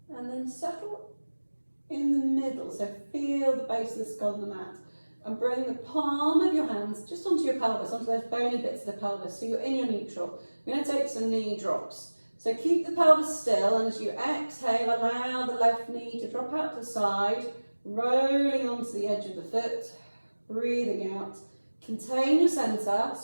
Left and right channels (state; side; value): inverted; both; correlation -1.00